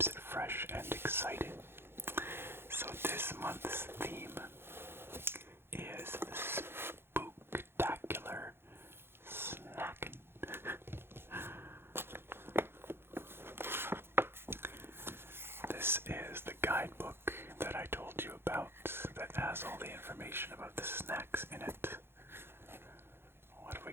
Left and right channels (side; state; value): left; late; 0.11 ms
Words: it fresh and exciting. So this month's theme is the Spooktacular Snackin. This is the guidebook that I told you about that has all the information about the snacks in it. What have we